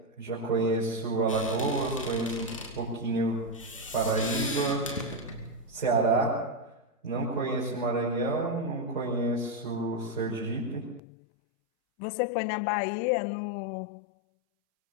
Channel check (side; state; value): right; drops out; at 11.0 s